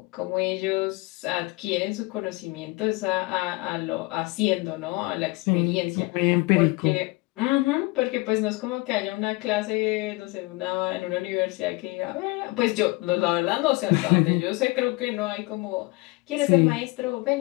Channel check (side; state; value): right; quieter; 24.0 dB